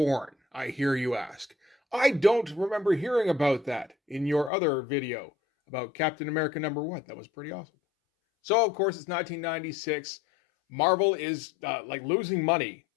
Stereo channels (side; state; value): right; drops out; at 4.5 s